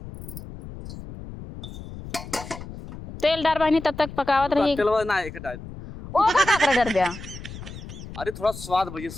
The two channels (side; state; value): left; noise; rumble, 12 dB below the sound